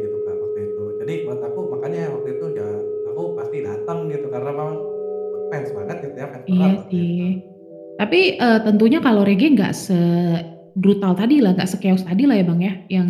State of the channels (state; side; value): identical; both; correlation 1.00